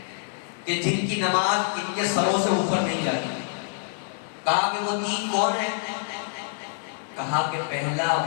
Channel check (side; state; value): right; silent; 61 dB below the other